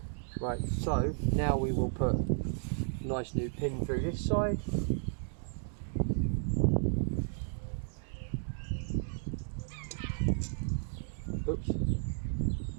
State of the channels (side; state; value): left; silent; digital silence